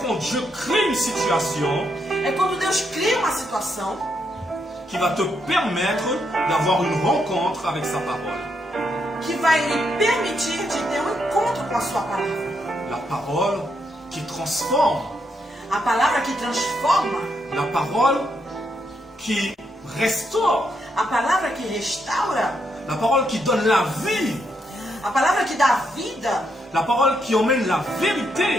quand Dieu crée une situation É quando Deus cria uma situação qui va te permettre d'avoir une rencontre avec sa parole. que vai lhe permitir de ter um encontro com a sua palavra. La parole qui transforme, A palavra que transforma, la parole qui restaure, a palavra que restaura, la parole qui donne la vie, a palavra que dá vida, la parole qui emmène la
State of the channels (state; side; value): normal; both; correlation 0.79